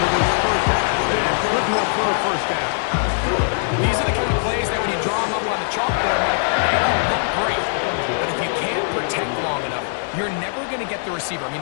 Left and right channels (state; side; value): silent; right; digital silence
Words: this first half, and good enough for a first down. These are the kind of plays that when you draw them up on the chalkboard, they don't look great. But if you can't protect long enough, you're never going to get the receiver. I